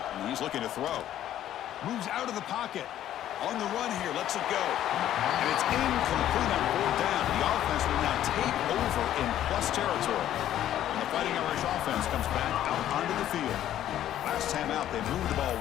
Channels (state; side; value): quieter; right; 11.9 dB